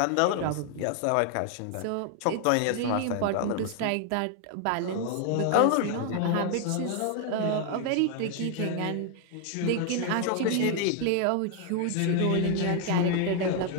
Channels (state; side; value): different; both; correlation 0.00